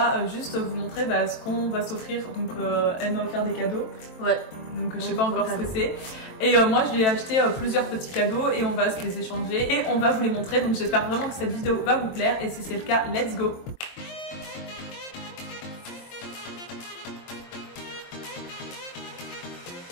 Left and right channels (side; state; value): right; late; 23 ms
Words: juste vous montrer ce qu'on va s'offrir. Donc elle m'a offert des cadeaux. Ouais. Donc je sais pas encore ce que c'est. Et moi je lui ai acheté plusieurs petits cadeaux et on va se les échanger et on va vous les montrer. Donc j'espère vraiment que cette vidéo va vous plaire et si c'est le cas, let's go.